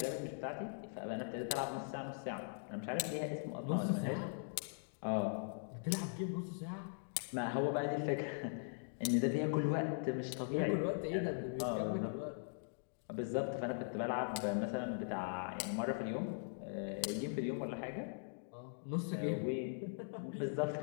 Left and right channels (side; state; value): right; silent; digital silence